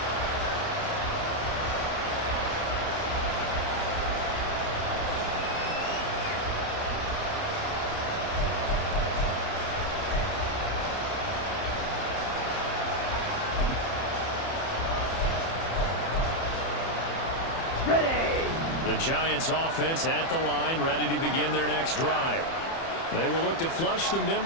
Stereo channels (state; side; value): late; right; 30 ms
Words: Ready. The Giants offense at the line, ready to begin their next drive. They will look to flush the